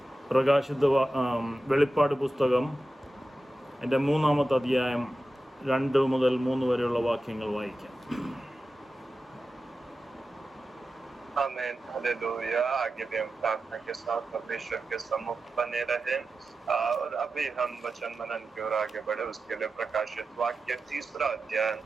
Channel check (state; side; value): normal; both; correlation 0.93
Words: വെളിപ്പാട് പുസ്തകം എൻ്റെ 3-ാമത്തെ അധ്യായം 2 മുതൽ 3 വരെയുള്ള വാക്യങ്ങൾ വായിക്കാം. आमेन, हालेलुया। आगे भी हम प्रार्थना के साथ परमेश्वर के सम्मुख बने रहे और अभी हम वचन मनन की ओर आगे बढ़े। उसके लिए प्रकाशित वाक्य 3रा अध्याय